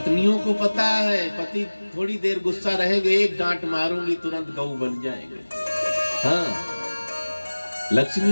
को पता है पति थोड़ी देर गुस्सा रहेंगे, एक डांट मारूंगी तुरंत गऊ बन जाएंगे। हाँ,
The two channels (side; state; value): both; inverted; correlation -1.00